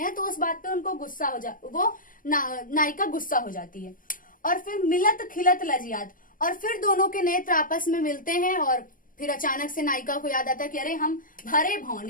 तो उस बात पे उनको गुस्सा हो नायिका गुस्सा हो जाती है। और फिर मिलत खिलत लजियात, और फिर दोनों के नेत्र आपस में मिलते हैं, और फिर अचानक से नायिका को याद आता है कि अरे हम भरे भवन,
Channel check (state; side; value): late; right; 0.40 ms